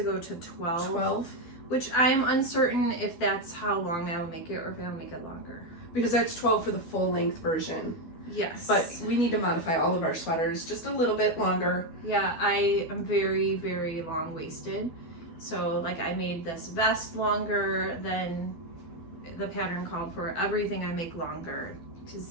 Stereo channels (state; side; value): late; right; 12 ms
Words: go to 12, which I'm uncertain if that's how long I'll make it or if I'll make it longer. Because that's 12 for the full length version. Yes. But we need to modify all of our sweaters just a little bit longer. Yeah, I am very, very long-waisted. So like I made this vest longer than the pattern called for. Everything I make longer,